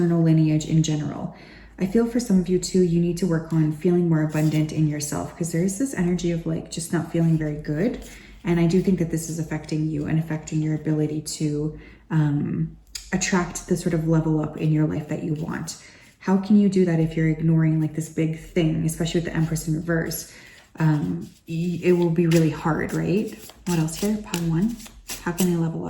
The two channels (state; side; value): identical; both; correlation 1.00